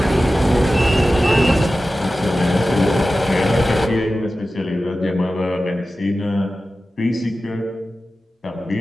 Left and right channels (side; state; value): both; normal; correlation 0.94